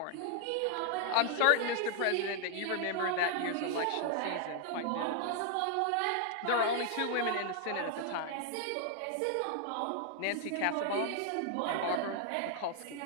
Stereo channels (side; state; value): both; different; correlation 0.00